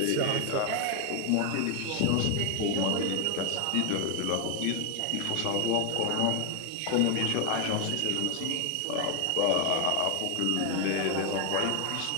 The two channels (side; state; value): both; different; correlation 0.01